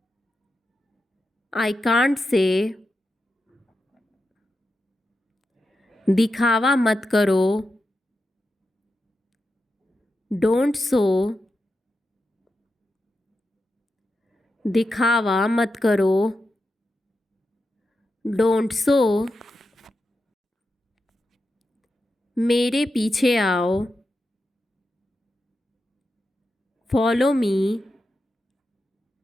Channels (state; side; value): normal; both; correlation 0.89